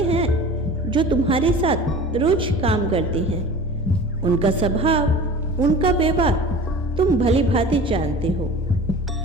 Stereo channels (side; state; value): both; normal; correlation 0.39